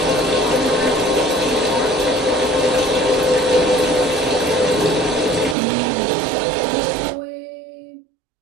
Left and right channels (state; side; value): drops out; left; at 5.6 s